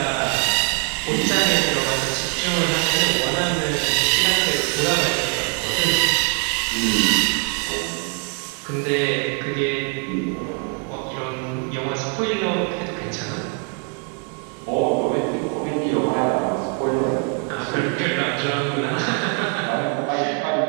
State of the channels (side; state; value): left; quieter; 38.1 dB